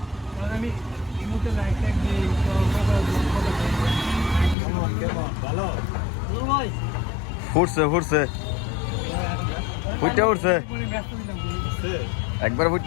ফুটছে ফুটছে ফুটে উঠছে, একবার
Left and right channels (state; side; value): drops out; right; at 4.5 s